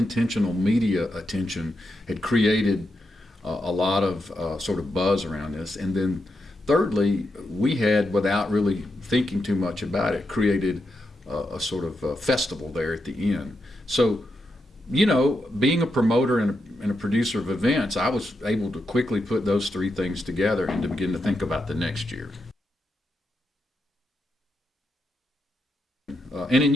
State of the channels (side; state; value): both; normal; correlation 0.84